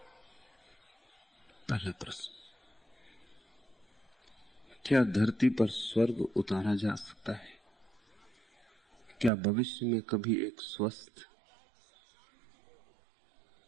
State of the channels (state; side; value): drops out; left; at 9.3 s